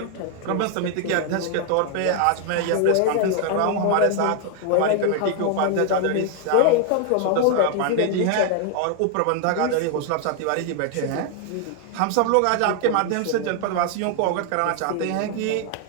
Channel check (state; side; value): different; both; correlation 0.00